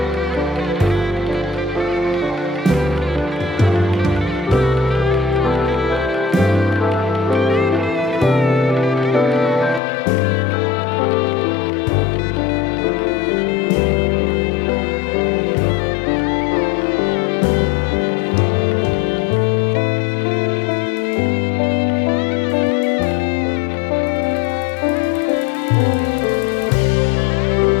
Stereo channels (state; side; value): drops out; right; at 9.8 s